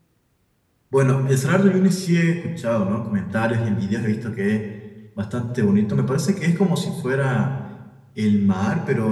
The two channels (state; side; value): identical; both; correlation 1.00